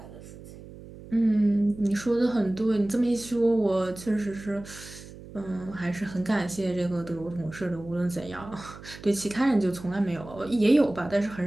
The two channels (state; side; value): noise; right; hum, 16 dB below the sound